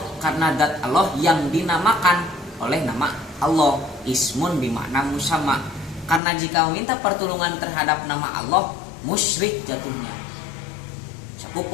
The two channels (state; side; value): drops out; right; at 6.2 s